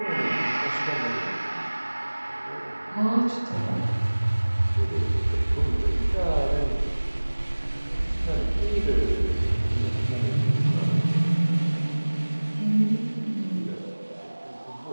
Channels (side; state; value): both; inverted; correlation -1.00